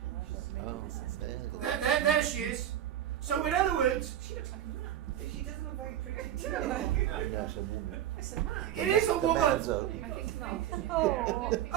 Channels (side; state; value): left; quieter; 11.2 dB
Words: I thought maybe this is There she is. So in other words, She looks like a man. She doesn't look very pretty too. No, it's a woman. It's a man. it is a woman. I think not. Oh.